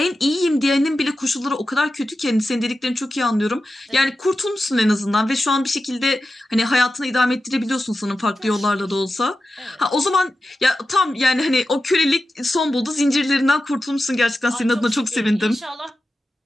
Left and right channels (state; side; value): normal; both; correlation 0.92